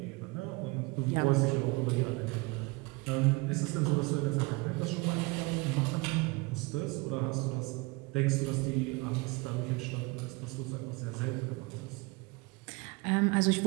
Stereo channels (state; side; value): quieter; left; 25.6 dB